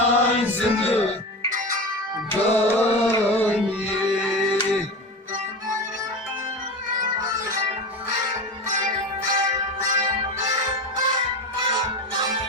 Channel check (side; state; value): both; normal; correlation 0.26